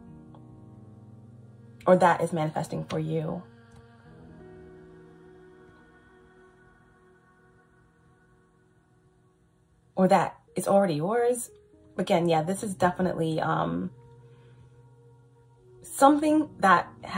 Or that is manifesting for you. Or that is already yours. Again, yeah, this is definitely something that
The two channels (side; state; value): both; identical; correlation 1.00